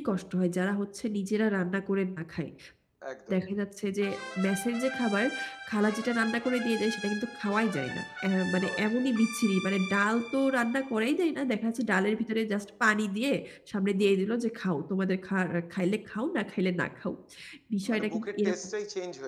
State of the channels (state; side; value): identical; both; correlation 1.00